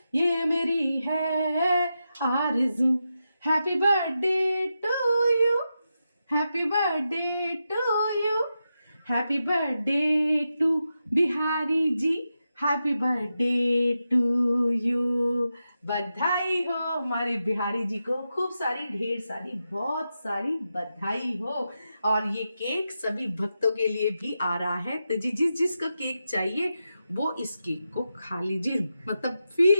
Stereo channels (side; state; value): both; inverted; correlation -0.88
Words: ये मेरी है आरज़ू। Happy birthday to you, happy birthday to you, happy birthday to Bihari ji, happy birthday to you. बधाई हो हमारे बिहारी जी को, खूब सारी ढेर सारी बहुत सारी बधाई हो। और ये केक सभी भक्तों के लिए भी आ रहा है। तो जिस जिसको केक चाहिए वो इस केक को खा लीजिए, मतलब